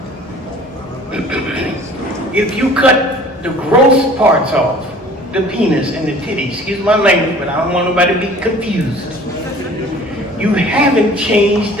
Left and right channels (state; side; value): normal; both; correlation 0.48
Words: If you cut the gross parts off, the penis and the titty, excuse my language, but I don't want nobody to be confused. You haven't changed